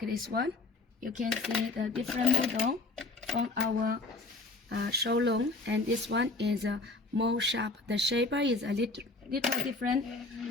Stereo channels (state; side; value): quieter; right; 3.4 dB